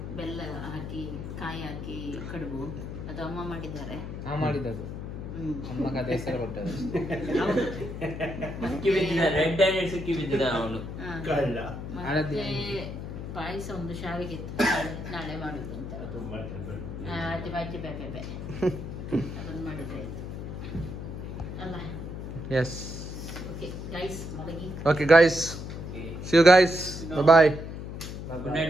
ಬೆಲ್ಲ ಹಾಕಿ ಕಾಯಿ ಹಾಕಿ ಕಡುಬು, ಅದು ಅಮ್ಮ ಮಾಡಿದ್ದಾರೆ. ಮಾಡಿದ್ದು ಅಮ್ಮ ಕಥೆ ಹೆಸರು ಕೊಟ್ಟದ್ದು ಸಿಕ್ಕಿ ಬಿದ್ದಿದ ರೆಡ್ ಹ್ಯಾಂಡೆಡ್ ಸಿಕ್ಕಿ ಬಿದ್ದಿದ ಅವನು. ಮತ್ತೆ ಪಾಯಸ ಒಂದು ಶಾವಿಗೆ ಇತ್ತು, ನಾಳೆ ಮಾಡುದು ಅಂತ. ಅಜ್ಜಿ ಬಾಜಿ ಬೇಬೆ ಅದನ್ನು ಮಾಡಿದ್ರೆ ಆಯ್ತು ಅಲ್ಲ. ಎಸ್ ಓಕೆ ಗೈಸ್, ಮಲಗಿ. Okay guys, see you guys, bye bye. Good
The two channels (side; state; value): left; noise; hum, 7 dB below the sound